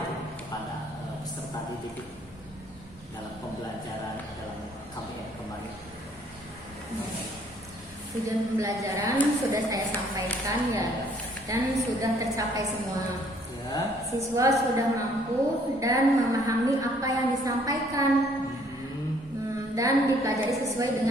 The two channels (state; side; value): normal; both; correlation 0.62